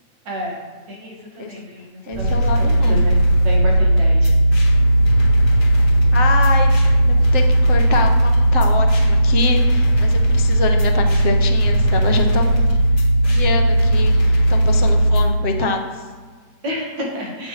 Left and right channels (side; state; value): left; late; 7.8 ms